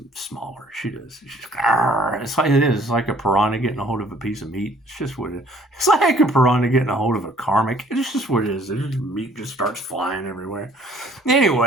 smaller. She does. It's like it is. It's like a piranha getting a hold of a piece of meat. It's just what it is. It's like a piranha getting a hold of a karmic. It's just what it is. Meat just starts flying everywhere.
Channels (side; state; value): both; normal; correlation 0.57